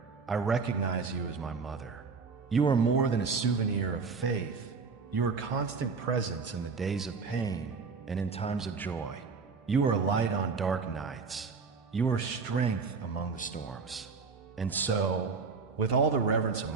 I recognize you as my mother. You are more than a souvenir of faith. You are constant presence in the days of pain and in times of joy. You are light on dark nights. You are strength among the storms. And so, with all the reverence of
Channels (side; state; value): left; quieter; 4.9 dB